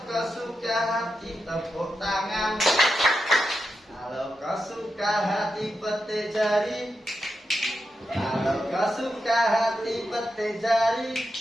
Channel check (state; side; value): normal; both; correlation 0.87